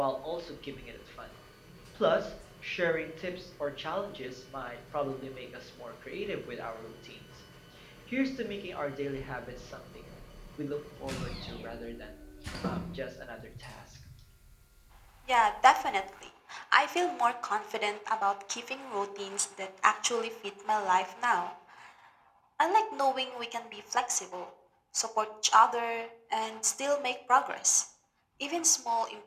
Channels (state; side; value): identical; both; correlation 1.00